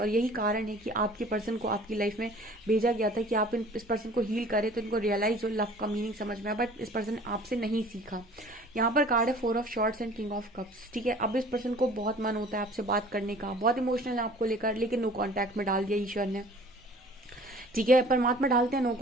और यही कारण है कि आपके पर्सन को आपकी लाइफ में भेजा गया था कि आप इस पर्सन को हील करें, तो इनको रियलाइज हो, लव का मीनिंग समझ में आया, बट इस पर्सन ने आपसे नहीं सीखा। यहाँ पर कार्ड है 4 of shorts and king of cups, ठीक है। अब इस पर्सन को बहुत मन होता है आपसे बात करने का, बहुत इमोशनल है आपको लेकर, लेकिन नो कांटेक्ट में डाल दिया ईश्वर ने। ठीक है। परमात्मा डालते हैं नो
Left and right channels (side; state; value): both; normal; correlation 0.49